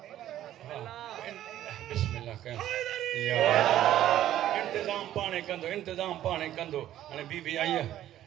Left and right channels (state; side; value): quieter; left; 12.6 dB